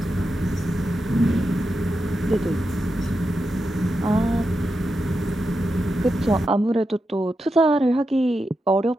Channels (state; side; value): normal; both; correlation 0.88